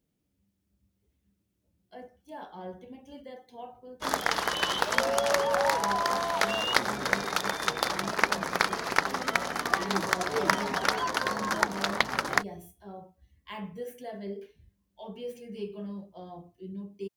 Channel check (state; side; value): identical; both; correlation 1.00